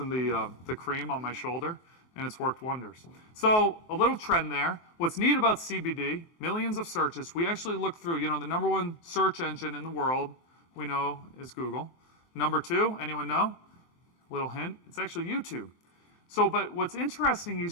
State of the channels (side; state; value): right; late; 23 ms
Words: the cream on my shoulder, and it's worked wonders. So a little trend there. What's neat about CBD, millions of searches, we actually look through, the number 1 search engine in the world we know is Google. Number 2, anyone know? Little hint, it's actually YouTube. So, but what's interesting